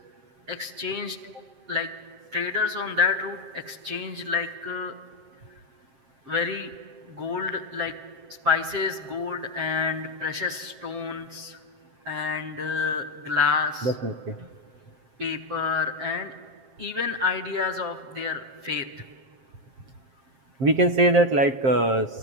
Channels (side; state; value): left; late; 7.6 ms